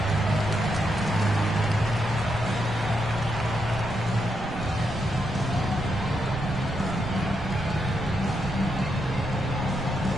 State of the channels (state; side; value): noise; right; rumble, 11 dB below the sound